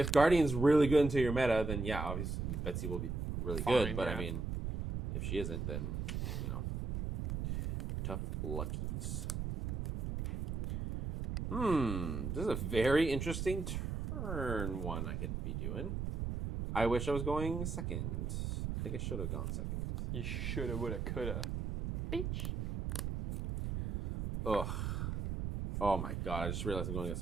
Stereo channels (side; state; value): right; noise; rumble, 2 dB below the sound